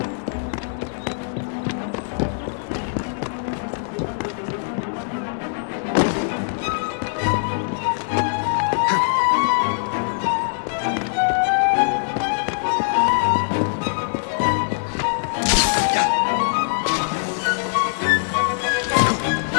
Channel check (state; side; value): silent; right; 64 dB below the other